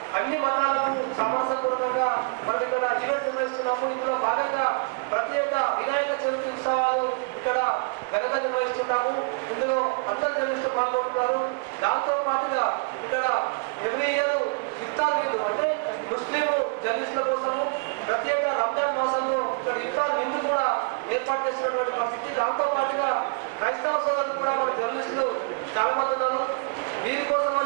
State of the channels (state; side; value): quieter; left; 33.1 dB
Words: అన్ని మతాలకు సామరస్యపూర్వకంగా మనం ఇక్కడ ఈవెంట్ నిర్వహిస్తున్నాము. ఇందులో భాగంగా ప్రతి ఏటా వినాయక చవితి ఉత్సవాలు ఇక్కడ ఘనంగా నిర్వహిస్తున్నాము. ఇందులో అందరు జర్నలిస్టులు పాల్గొంటున్నారు. దాంతో పాటుగా ఇక్కడ ఎవ్రీ ఇయర్ ఇఫ్తార్ విందు అంటే ముస్లిం జర్నలిస్టుల కోసము ప్రతి ఏటా రంజాన్ మాసంలో ఇక్కడ ఇఫ్తార్ విందు కూడా ఏర్పాటు చేసినటువంటి పరిస్థితి. దాంతో పాటుగా క్రైస్తవ సోదరులు కూడా మన జర్నలిస్టులు చాలా మంది ఉన్నారు. వీరి